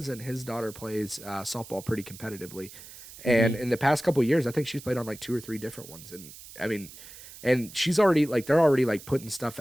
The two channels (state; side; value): noise; right; hiss, 17 dB below the sound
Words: his daughter plays softball pretty competitively. And Hmm. in the past couple of years, I think she's played on like two or three different ones. And I mean, and she's already like they're already like putting stuff